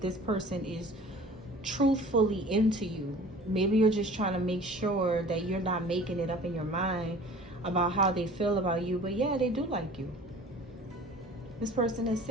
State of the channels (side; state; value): both; normal; correlation 0.45